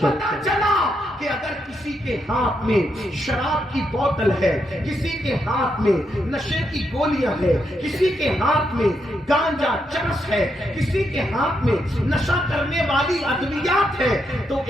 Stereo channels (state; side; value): normal; both; correlation 0.81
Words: پتہ چلا کہ اگر کسی کے ہاتھ میں شراب کی بوتل ہے، کسی کے ہاتھ میں نشے کی گولیاں ہے، کسی کے ہاتھ میں گانجا چرس ہے، کسی کے ہاتھ میں نشہ کرنے والی ادویات ہے، تو